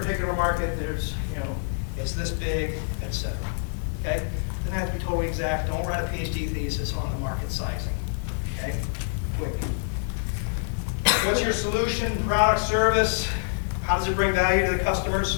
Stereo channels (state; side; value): silent; right; digital silence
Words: market, there's, you know, it's this big, etc. Okay? Doesn't have to be totally exact. Don't write a PhD thesis on the market sizing. Okay? Quick. What's your solution, product, service? How does it bring value to the